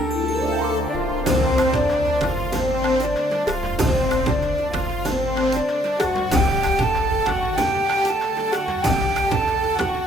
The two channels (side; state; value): both; normal; correlation 0.67